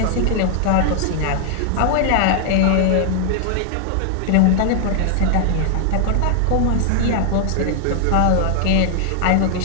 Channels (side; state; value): both; different; correlation 0.00